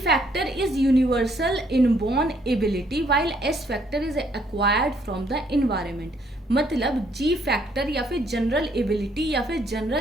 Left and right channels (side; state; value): both; normal; correlation 0.68